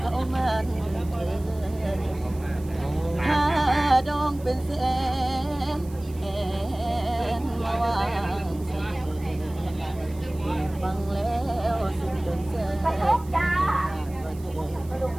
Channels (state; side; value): noise; right; hiss, 23 dB below the sound